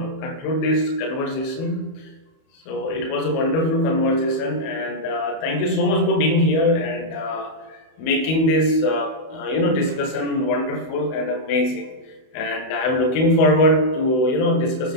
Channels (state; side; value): late; right; 31 ms